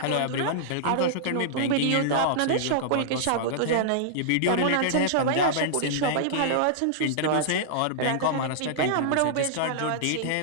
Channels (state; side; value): different; both; correlation -0.02